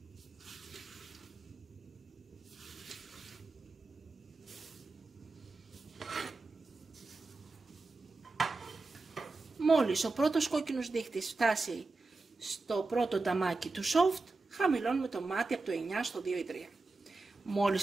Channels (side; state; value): left; quieter; 3.6 dB